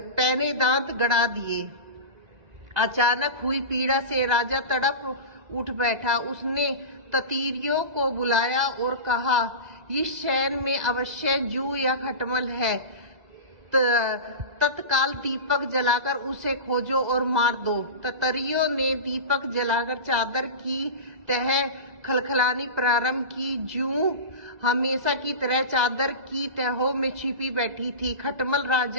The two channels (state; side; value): late; left; 2.0 ms